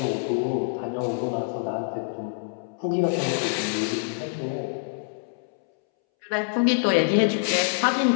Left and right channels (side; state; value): right; silent; 61 dB below the other